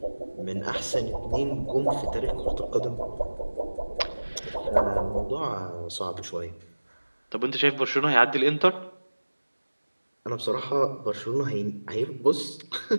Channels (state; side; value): inverted; both; correlation -1.00